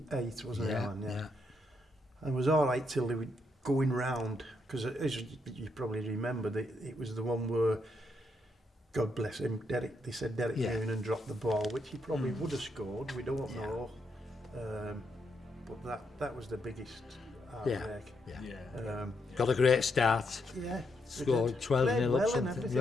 wasn't it, Alan? Yeah. And it was all right till they were going round, because as you probably remember, it was the one where, God bless him, they said Derek Yeah. Noonan dropped the ball, which he probably would have scored, we don't know. But that was the biggest heartbreak. Yeah. Got a great start. Yeah. Scored 12-0 Played up well and something. everything,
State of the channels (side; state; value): both; normal; correlation 0.79